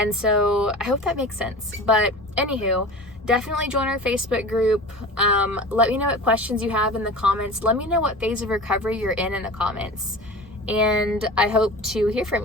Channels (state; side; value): normal; both; correlation 0.35